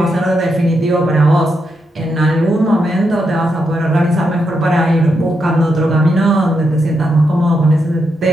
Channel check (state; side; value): normal; both; correlation 0.83